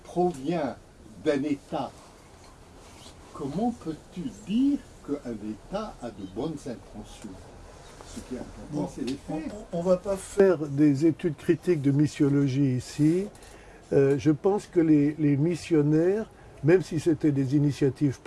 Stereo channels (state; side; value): identical; both; correlation 1.00